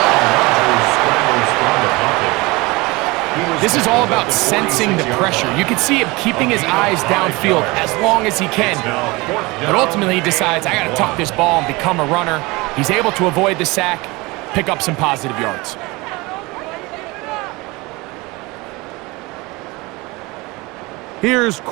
This is all about sensing the pressure. You can see him keeping his eyes downfield as long as he can. But ultimately he decides, I got to tuck this ball and become a runner. He's able to avoid the sack, pick up some positive yards. Here's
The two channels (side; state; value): left; quieter; 23.6 dB